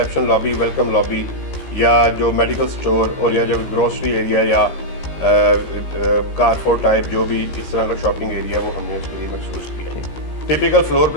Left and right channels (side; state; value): right; late; 15 ms